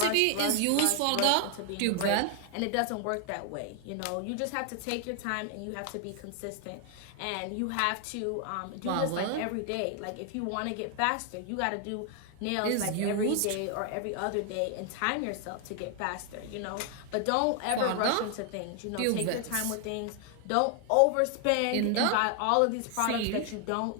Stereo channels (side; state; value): both; different; correlation 0.00